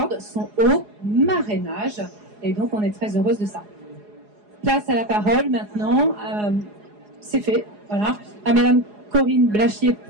son haut marrainage. Et donc on est très heureuse de ça. Place à la parole maintenant. C'est fait, voilà. À Madame Corinne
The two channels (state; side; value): late; left; 4.8 ms